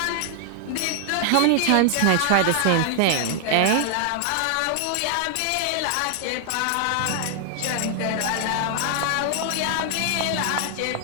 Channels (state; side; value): different; both; correlation 0.00